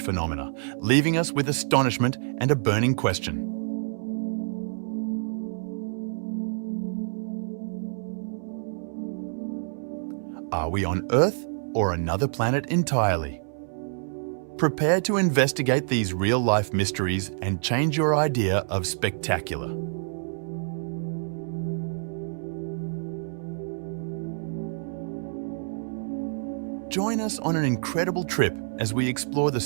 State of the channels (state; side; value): silent; left; 60 dB below the other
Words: phenomena, leaving us with astonishment and a burning question. Are we on Earth or another planet entirely? Prepare to investigate these real-life mysteries and change your idea of spectacular. Join us on an incredible trip as we explore the